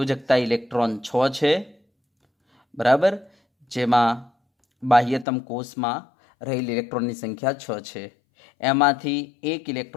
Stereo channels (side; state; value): right; drops out; at 5.2 s